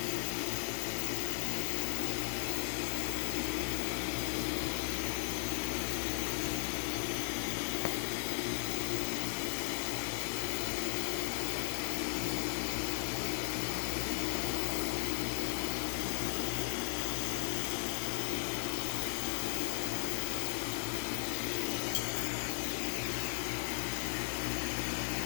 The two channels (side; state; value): right; silent; digital silence